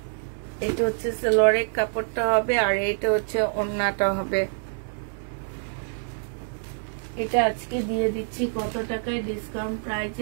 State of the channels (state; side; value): silent; left; digital silence